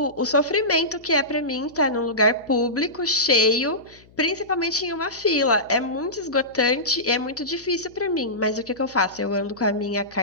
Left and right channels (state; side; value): noise; left; hum, 27 dB below the sound